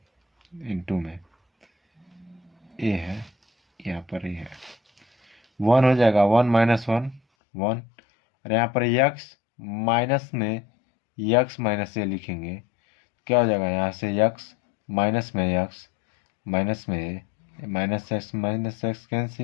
into में ए है, यहाँ पर ए है, 1 हो जाएगा, 1 माइनस 1 1, और यहाँ पर x माइनस में यक्स माइनस ए लिखेंगे, क्या हो जाएगा, यहाँ से यक्स माइनस में यक्स माइनस में ए, माइनस एक्स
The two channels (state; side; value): drops out; right; at 7.2 s